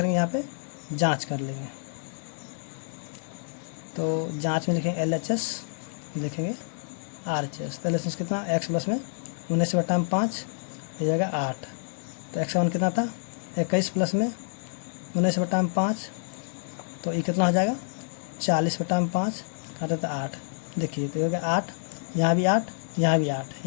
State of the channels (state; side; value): silent; right; digital silence